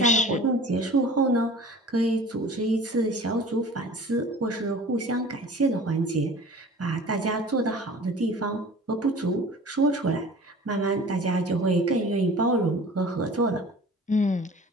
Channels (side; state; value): both; normal; correlation 0.43